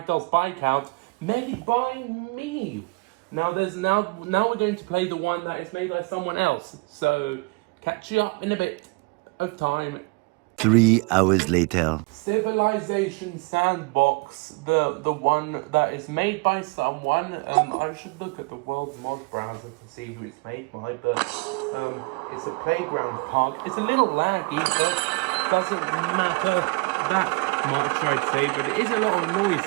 BIKEOUT, made by me. Now we're going to play the one that is made by someone else. So catch you up in a bit of time. 3 hours later. Civilization Sandbox, the one that is made by someone. I should look at the world mod browser to see who it's made by, but it's a playground park. It's a little laggy, but doesn't matter that much, I'd say. But it is a lot of noise,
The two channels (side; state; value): left; quieter; 27.9 dB